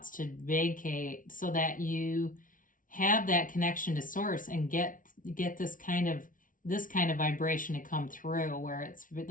to vacate so that you have that connection to source and get this kind of vibration to come through, where it's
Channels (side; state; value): right; late; 0.38 ms